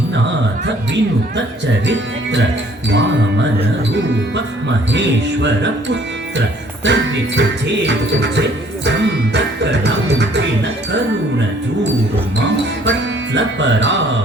विनुत चरित्र वामन रूप महेश्वर पुत्र तर्रि तुझे तुझे संतकलंकिन करुण जूर्मा पट्ल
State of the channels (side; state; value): both; normal; correlation 0.59